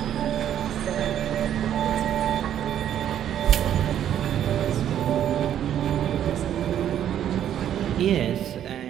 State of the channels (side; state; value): left; quieter; 10.4 dB